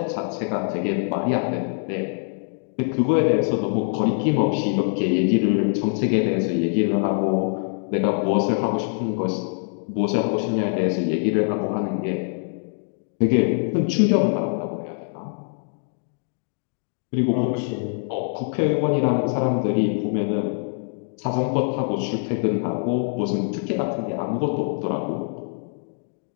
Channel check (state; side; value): silent; right; 58 dB below the other